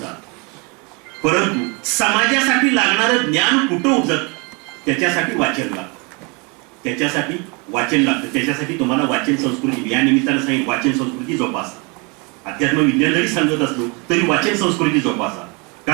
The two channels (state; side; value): quieter; left; 30.7 dB